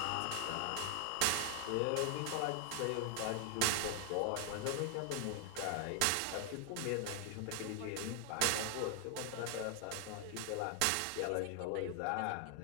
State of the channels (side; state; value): both; different; correlation 0.00